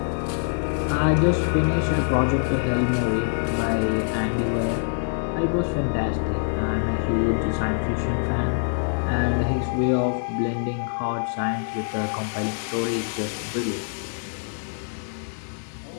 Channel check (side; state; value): right; silent; 59 dB below the other